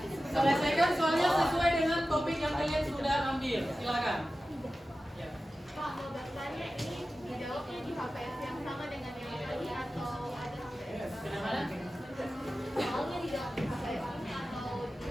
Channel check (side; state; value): both; normal; correlation 0.94